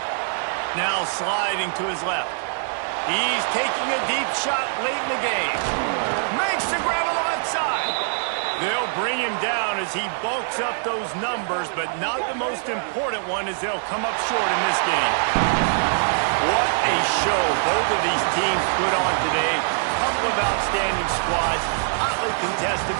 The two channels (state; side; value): silent; left; 63 dB below the other